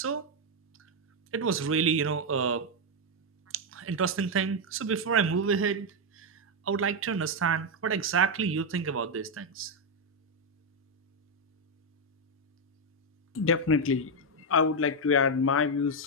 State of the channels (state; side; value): normal; both; correlation 0.03